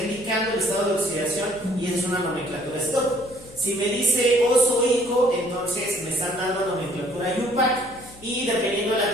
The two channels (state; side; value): noise; left; hum, 21 dB below the sound